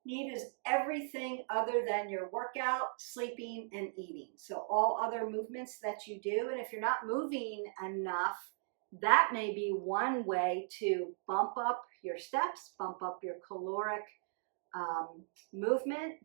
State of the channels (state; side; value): silent; left; digital silence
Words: NEAT is everything other than your workout, sleeping, and eating. So all other movements that you do, and if you're not moving enough, that may be one way to bump up your steps, bump up your caloric movement,